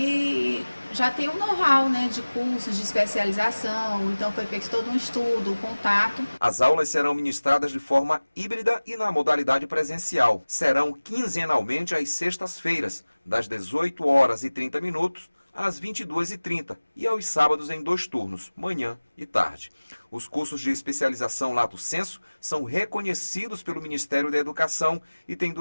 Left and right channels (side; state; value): both; inverted; correlation -1.00